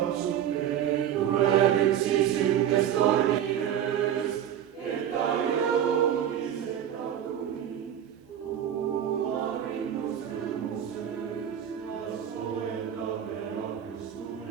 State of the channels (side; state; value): left; quieter; 9.9 dB